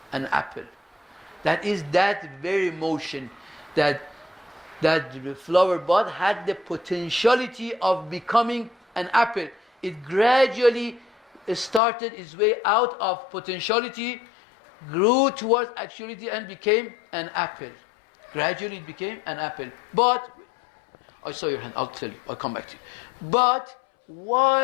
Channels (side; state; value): right; drops out; at 11.8 s